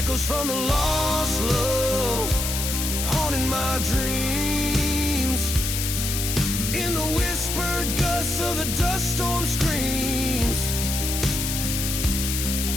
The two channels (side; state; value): left; noise; hiss, 2 dB below the sound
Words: from the lost love, haunting my dreams, in the whispered gusts of the dust storm screams.